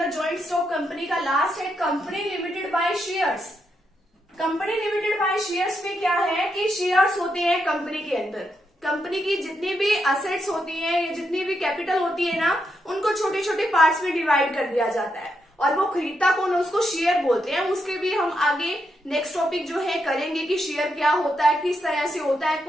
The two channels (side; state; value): both; normal; correlation 0.82